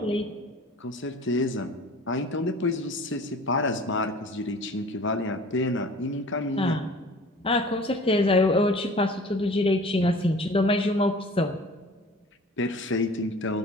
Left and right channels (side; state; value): both; normal; correlation 0.44